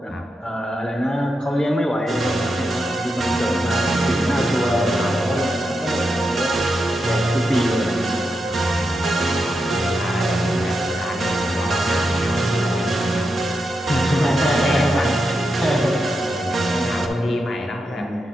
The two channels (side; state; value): both; normal; correlation 0.86